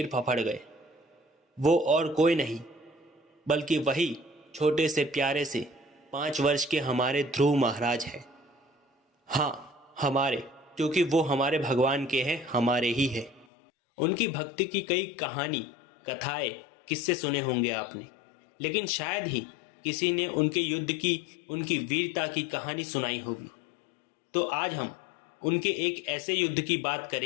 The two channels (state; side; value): drops out; right; at 13.5 s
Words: फफड़ गए। वो और कोई नहीं बल्कि वही छोटे से प्यारे से 5 वर्ष के हमारे ध्रुव महाराज हैं। हाँ, हमारे, क्योंकि वो हमारे भगवान के हैं, हमारे ही है। उनकी भक्ति की कई कहानी, कथाएं, किस्से सुने होंगे आपने, लेकिन शायद ही किसी ने उनके युद्ध की, उनकी वीरता की कहानी सुनाई होगी। तो आज हम उनके एक ऐसे युद्ध की बात